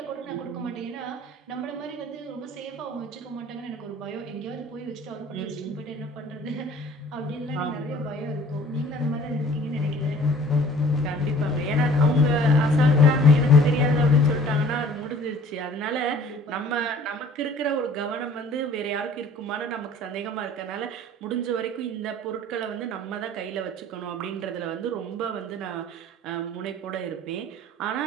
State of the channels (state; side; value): normal; both; correlation 0.50